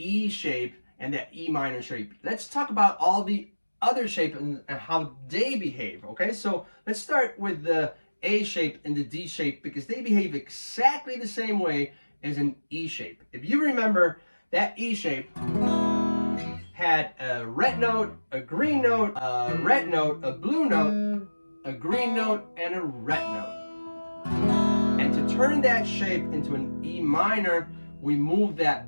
shape and that E minor shape. Let's talk about all the other shapes and how they behave, okay? So let's start with the A shape and the D shape because they behave exactly the same way as an E shape. If you remember, that E shape had a red note, a green note, a red note, a blue note, a green note, and a red note. And to turn that shape into an E minor, we moved that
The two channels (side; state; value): both; inverted; correlation -1.00